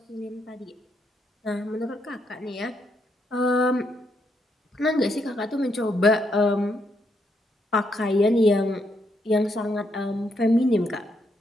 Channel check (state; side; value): normal; both; correlation 0.77